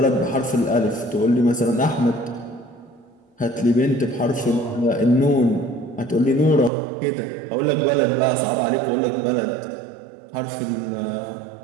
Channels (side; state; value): left; drops out; at 6.7 s